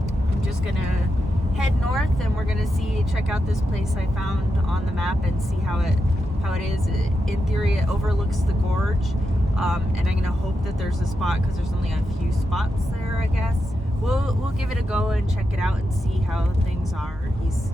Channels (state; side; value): normal; both; correlation 0.87